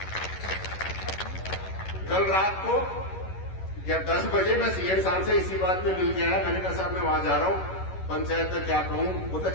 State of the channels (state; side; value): late; right; 11 ms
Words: कल रात को या 10 बजे मैं सीएम साहब से इसी बात में मिल गया है। मैंने कहा साहब मैं वहां जा रहा हूं, पंचायत में क्या कहूं, वो तो